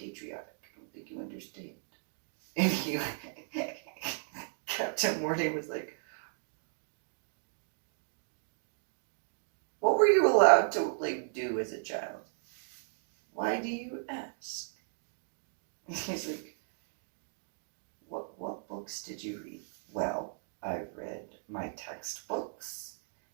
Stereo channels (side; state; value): left; silent; digital silence